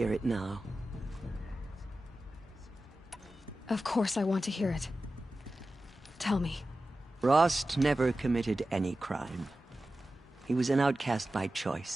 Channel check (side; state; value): both; normal; correlation 0.94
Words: it now? Of course I want to hear it. Tell me. Rost never committed any crime. He was an outcast by